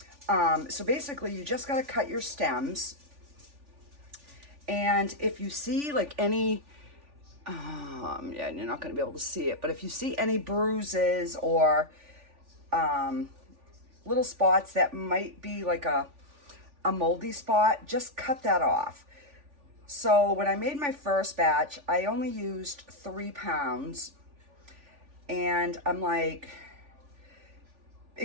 so basically you just got to cut your stems. And if you see like any, yeah, you're not going to be able to see it, but if you see any bruises or little spots that might be like a moldy spot, just cut that off. So when I made my first batch, I only used 3 pounds. And I'm like,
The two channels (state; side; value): late; left; 3.4 ms